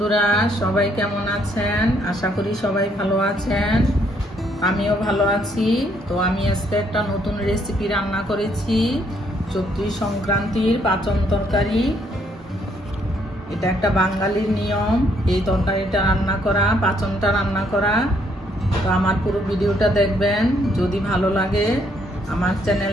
সবাই কেমন আছেন? আশা করি সবাই ভালো আছেন। আমিও ভালো আছি। তো আমি আজকে একটা নতুন রেসিপি রান্না করেছি, চৈত্র সংক্রান্তির পাচন তরকারি। এটা একটা বাঙালির নিয়ম, এই তরকারিটা রান্না করা, পাচনটা রান্না করা। তো আমার পুরো ভিডিওটা দেখবেন। যদি ভালো লাগে আমার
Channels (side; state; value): both; normal; correlation 0.70